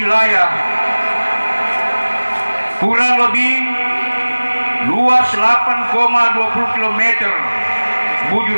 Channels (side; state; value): both; inverted; correlation -1.00